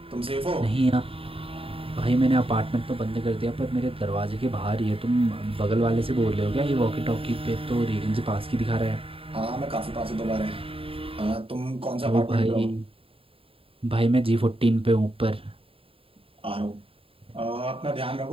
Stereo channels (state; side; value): late; left; 0.27 ms